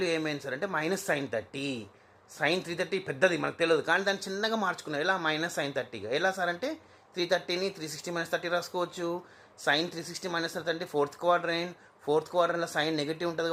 ఏమైంది సార్ అంటే మైనస్ sin 30. సైన్ 330 పెద్దది మనకు తెలియదు, కానీ దాన్ని చిన్నగా మార్చుకున్నాం. ఎలా? మైనస్ సైన్ 30గా. ఎలా సార్ అంటే 330ని 360 మైనస్ 30 రాసుకోవచ్చు. సైన్ 360 మైనస్ 30 అంటే ఫోర్త్ క్వాడ్రంట్లో సైన్ నెగిటివ్ ఉంటుంది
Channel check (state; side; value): identical; both; correlation 1.00